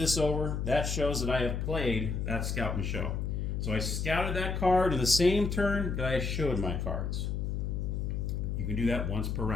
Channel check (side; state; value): left; noise; hum, 1 dB below the sound